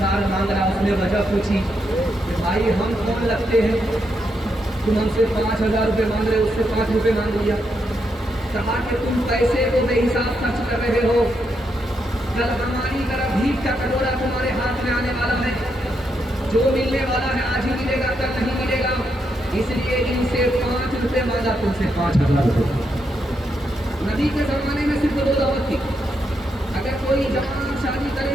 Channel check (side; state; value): both; normal; correlation 0.81